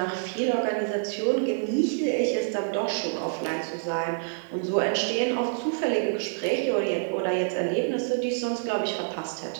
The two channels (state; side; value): silent; left; 55 dB below the other